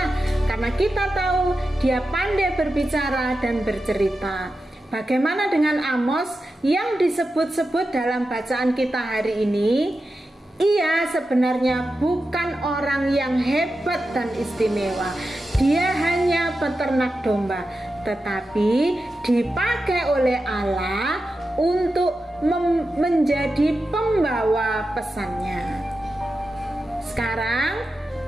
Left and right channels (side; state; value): both; normal; correlation 0.91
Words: karena kita tahu dia pandai berbicara dan bercerita. Bagaimana dengan Amos yang disebut-sebut dalam bacaan kita hari ini? Ia sebenarnya bukan orang yang hebat dan istimewa. Dia hanya peternak domba, tetapi dipakai oleh Allah untuk menjadi pembawa pesannya. Sekarang